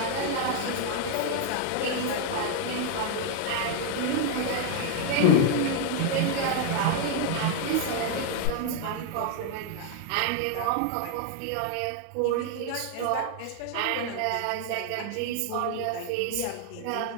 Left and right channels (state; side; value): different; both; correlation 0.00